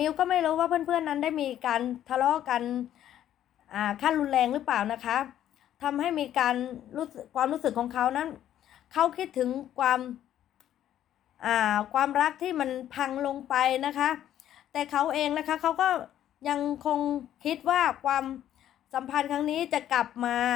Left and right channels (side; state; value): right; quieter; 11.4 dB